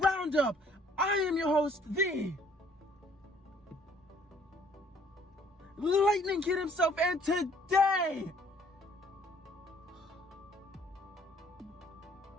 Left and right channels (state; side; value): normal; both; correlation 0.60